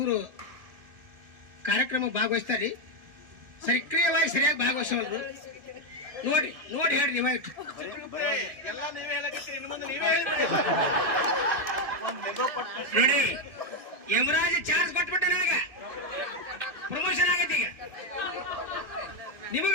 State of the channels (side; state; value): left; late; 1.7 ms